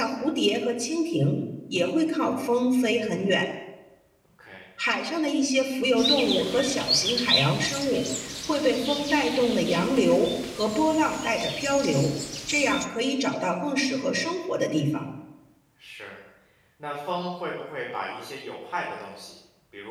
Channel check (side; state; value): both; identical; correlation 1.00